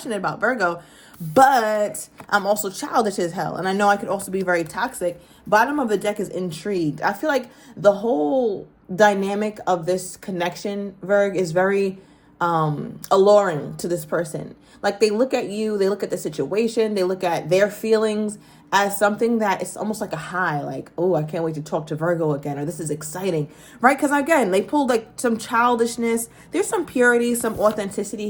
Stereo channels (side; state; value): both; identical; correlation 1.00